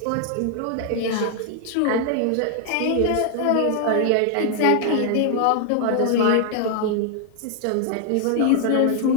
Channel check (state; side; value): different; both; correlation 0.00